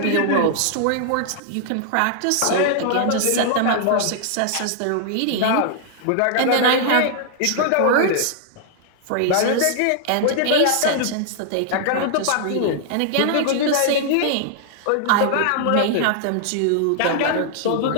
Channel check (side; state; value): both; different; correlation -0.01